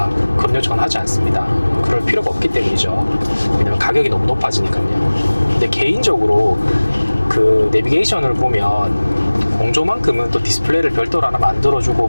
그런 요청은 하지 않습니다. 그럴 필요가 없기 때문이죠. 왜냐면 가격이 너무 높아지니까요. 근데 개인적으로 그 내비게이션을 보면 공조만큼은 또 디스플레이를 별도로 하나 만들어주고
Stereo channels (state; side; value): inverted; both; correlation -1.00